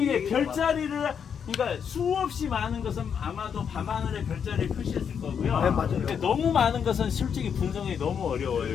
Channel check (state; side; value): quieter; right; 7.4 dB